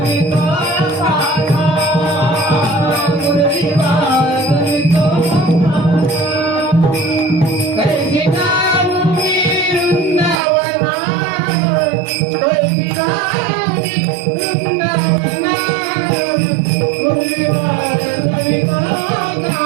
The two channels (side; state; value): left; drops out; at 10.4 s